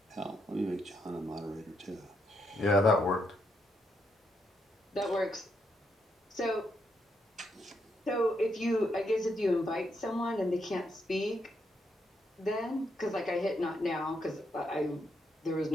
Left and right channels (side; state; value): both; normal; correlation 0.78